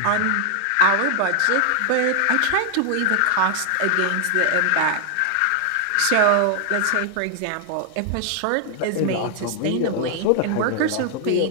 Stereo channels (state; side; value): different; both; correlation 0.00